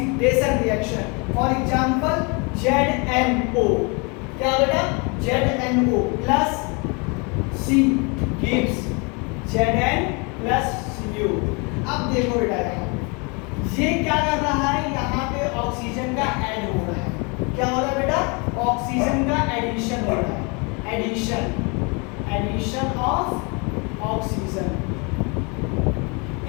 reaction. For example, ZNO, क्या बेटा, ZNO plus C gives Zn plus Cu। अब देखो बेटा यहाँ ये क्या कर रहा है, यहाँ पे ऑक्सीजन का ऐड हो रहा है। क्या हो रहा है बेटा, ऑक्सीजन का एडिशन हो रहा है, एडिशन ऑफ ऑक्सीजन।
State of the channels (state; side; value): quieter; right; 31.3 dB